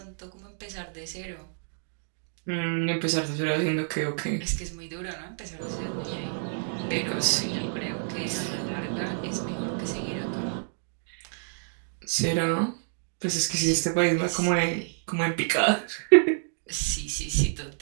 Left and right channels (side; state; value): left; silent; digital silence